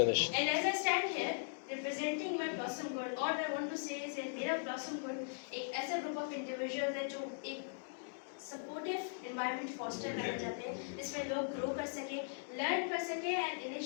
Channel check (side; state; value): right; silent; digital silence